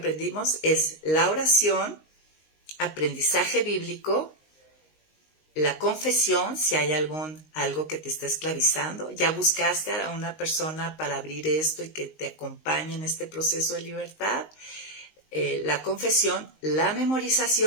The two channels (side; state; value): right; late; 19 ms